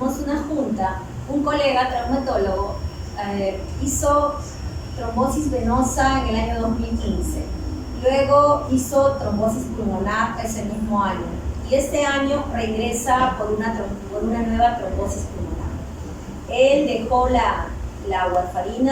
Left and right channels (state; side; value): identical; both; correlation 1.00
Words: una junta, un colega traumatólogo hizo trombosis venosa en el año 2015, luego hizo trombosis pulmonar ese mismo año y este año regresa por una nueva trombosis pulmonar. Él dejó la